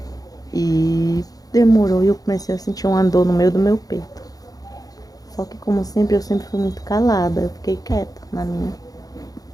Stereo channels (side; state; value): right; late; 0.18 ms